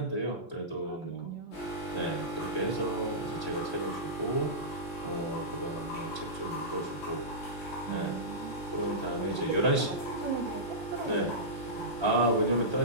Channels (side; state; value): both; normal; correlation -0.15